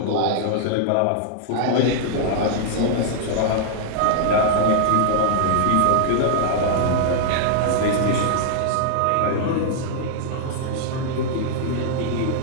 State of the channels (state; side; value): different; both; correlation -0.01